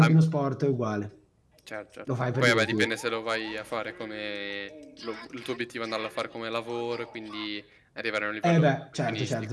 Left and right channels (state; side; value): identical; both; correlation 1.00